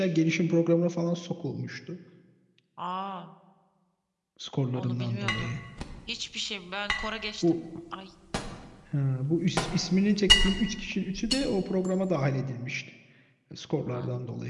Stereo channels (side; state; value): both; identical; correlation 1.00